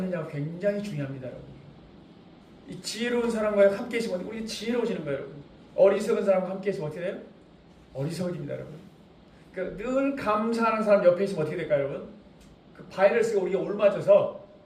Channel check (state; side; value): identical; both; correlation 1.00